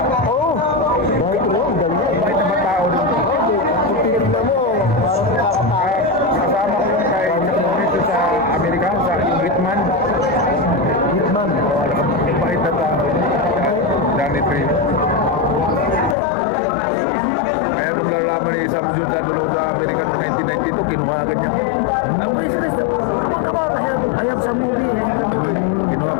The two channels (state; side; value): drops out; right; at 16.2 s